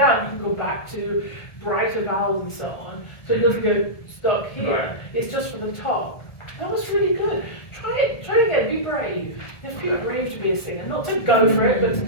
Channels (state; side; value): late; right; 1.7 ms